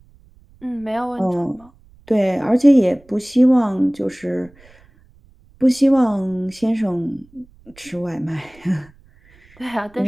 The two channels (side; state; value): right; noise; rumble, 28 dB below the sound